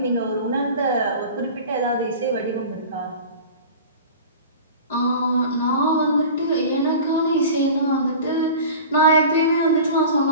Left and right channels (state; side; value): inverted; both; correlation -0.37